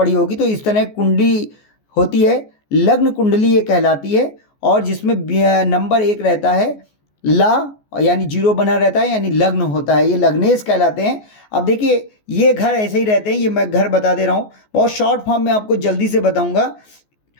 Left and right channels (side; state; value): right; late; 14 ms